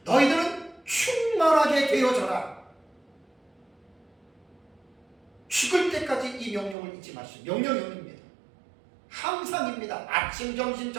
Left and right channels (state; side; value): drops out; left; at 6.8 s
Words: 너희들은 충만하게 되어져라. 죽을 때까지 이 명령을 잊지 마시오. 명령입니다. 항상입니다. 아침, 점심,